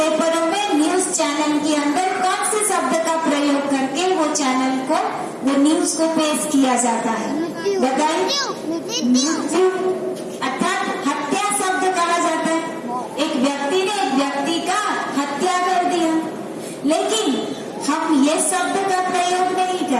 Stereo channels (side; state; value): both; identical; correlation 1.00